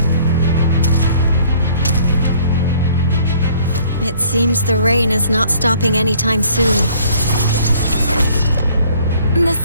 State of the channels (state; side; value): inverted; both; correlation -0.57